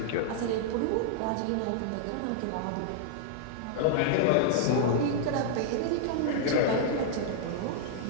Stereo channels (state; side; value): different; both; correlation -0.01